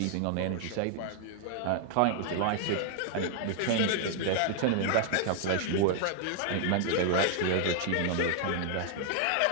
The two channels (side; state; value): both; different; correlation 0.00